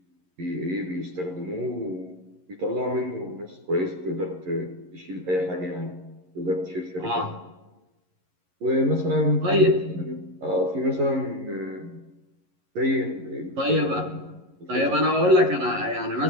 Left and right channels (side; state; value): left; late; 11 ms